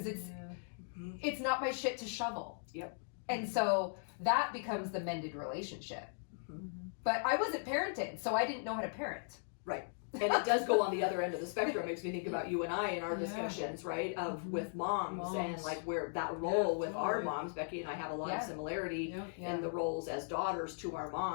it's not my shit to shovel. Yep. And so that becomes the mended relationship. But I wasn't parented, so I didn't know how to parent. Right. And it does go on the other end of the spectrum. Makes me think about you and I in our Yeah. discussions, right? Of with moms and Moms. like where that role Yeah, with our totally. moms, Becky and I have a lot Yeah. of similarity Yeah. in the roles as daughters to our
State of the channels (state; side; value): silent; right; digital silence